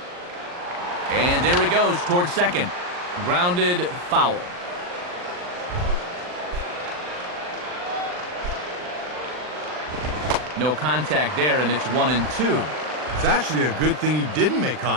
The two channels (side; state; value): left; late; 39 ms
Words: And there he goes towards second. Grounded, foul. No contact there, and it's 1-2. It's actually a good thing he didn't make